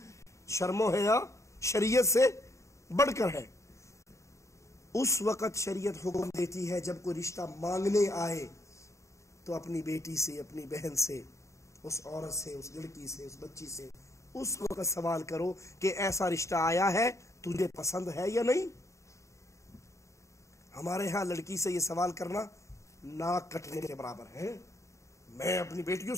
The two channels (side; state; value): right; late; 0.15 ms